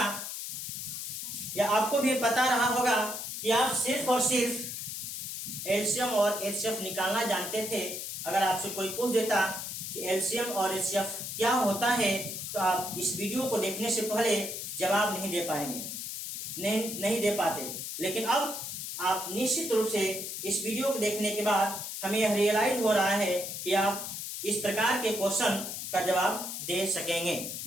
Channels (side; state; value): left; noise; hiss, 6 dB below the sound